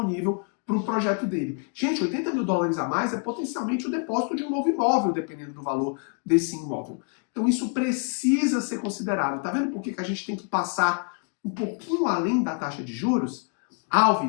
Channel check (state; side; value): quieter; right; 39.8 dB